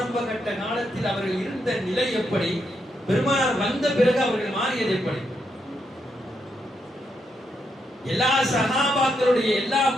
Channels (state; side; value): normal; both; correlation 0.80